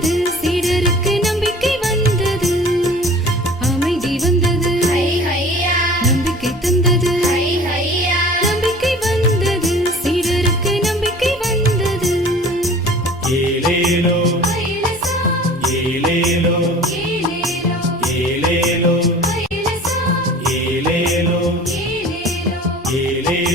சீடருக்கு நம்பிக்கை வந்தது. அமைதி வந்தது, நம்பிக்கை தந்தது. நம்பிக்கை வந்தது, சீடருக்கு நம்பிக்கை வந்தது. ஏலேலோ ஐலசா ஏலேலோ ஏலேலோ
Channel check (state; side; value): normal; both; correlation 0.44